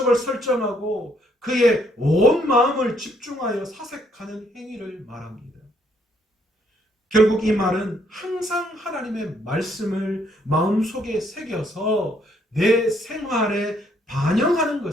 설정하고 그의 온 마음을 집중하여 사색하는 행위를 말합니다. 결국 이 말은 항상 하나님의 말씀을 마음속에 새겨서 내 생활에 반영하는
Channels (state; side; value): normal; both; correlation 0.69